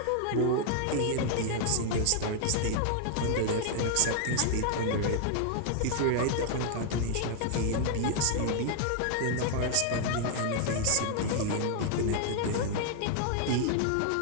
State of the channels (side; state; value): both; different; correlation 0.00